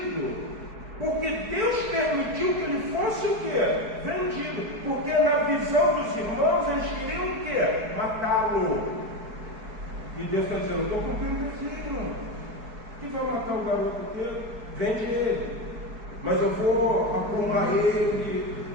porque Deus permitiu que ele fosse o quê? Vendido. Porque na visão dos irmãos eles queriam o quê? Matá-lo. E Deus está dizendo, eu estou cumprindo o desígnio. Quem vai matar o garoto aqui? Vende ele. Mas eu vou aprumar ele,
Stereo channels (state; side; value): late; left; 4.7 ms